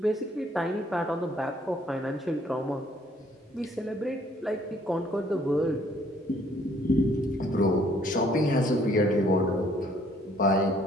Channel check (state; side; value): normal; both; correlation 0.63